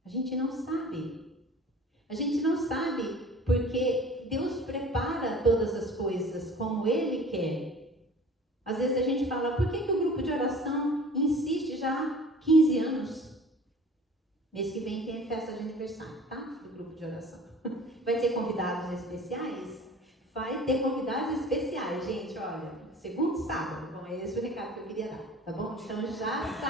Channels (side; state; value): both; normal; correlation 0.44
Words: A gente não sabe. A gente não sabe porque Deus prepara todas as coisas como Ele quer. Às vezes a gente fala, por que o grupo de oração insiste já 15 anos. Mês que vem tem festa de aniversário, tá? Do grupo de oração. Vai ter convidados especiais? Vai ter convidados especiais, gente, olha. Segundo sábado. Bom, é esse o recado que eu queria dar, tá bom? Então já